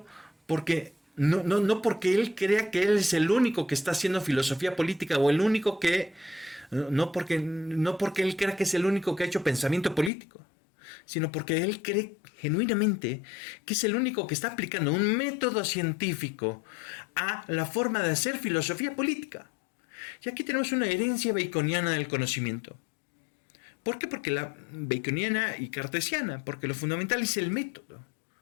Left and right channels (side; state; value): right; drops out; at 10.1 s